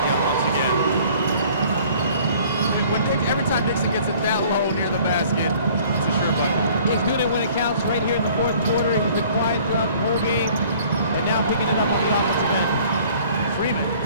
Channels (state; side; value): inverted; both; correlation -0.53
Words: once again. Every time Dixon gets it that low near the basket, it's a sure bucket. He's doing it when it counts right here in the fourth quarter. He's been quiet throughout the whole game, and now picking it up on the offensive end. Freeman